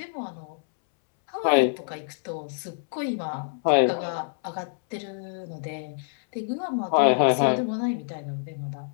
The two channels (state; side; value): silent; right; 60 dB below the other